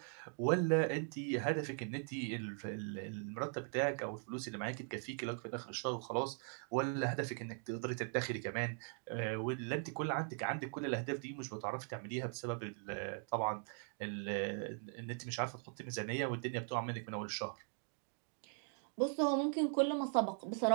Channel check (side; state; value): left; silent; 51 dB below the other